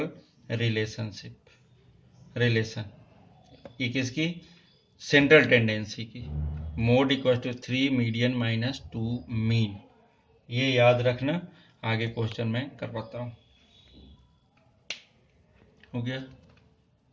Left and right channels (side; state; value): both; identical; correlation 1.00